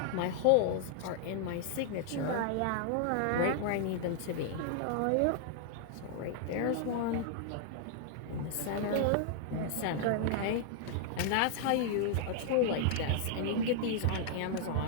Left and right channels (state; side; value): different; both; correlation -0.01